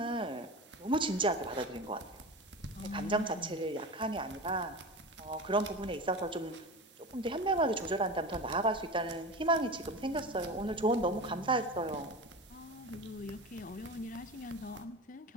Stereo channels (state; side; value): normal; both; correlation 0.28